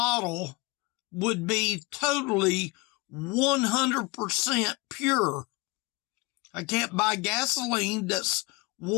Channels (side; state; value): right; quieter; 24.9 dB